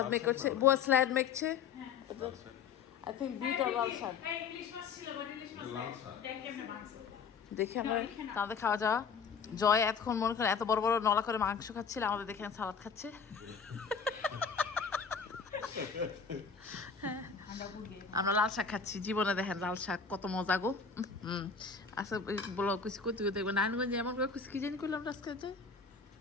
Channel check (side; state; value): right; quieter; 5.8 dB